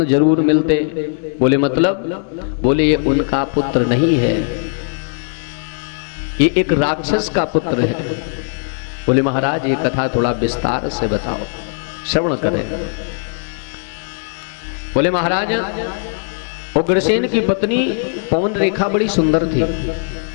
जरूर मिलते। बोले मतलब? बोले ये उनका पुत्र नहीं है, ये एक राक्षस का पुत्र है। बोले महाराज ये कथा थोड़ा विस्तार से बताओ, श्रवण करें। बोले महाराज उग्रसेन की पत्नी पवन रेखा बड़ी सुंदर थी,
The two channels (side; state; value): right; silent; digital silence